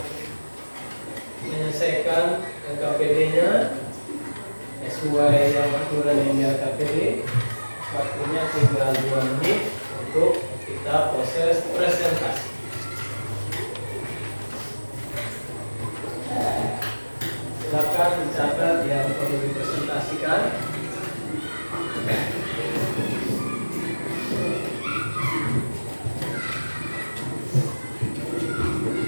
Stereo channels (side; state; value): both; inverted; correlation -1.00